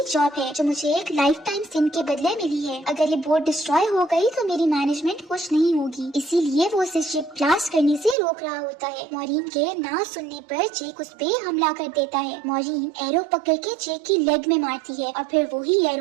जॉब है जो मुझे एक लाइफ टाइम सिन के बदले मिली है। अगर ये बोट डिस्ट्रॉय हो गई तो मेरी मैनेजमेंट खुश नहीं होगी, इसीलिए वो उसे शिप ब्लास्ट करने से रोक रहा होता है। मॉरीन के ना सुनने पर जेक उस पे हमला कर देता है। मॉरीन एरो पकड़ के जेक की लेग में मारती है और फिर वही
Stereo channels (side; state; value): left; drops out; at 8.2 s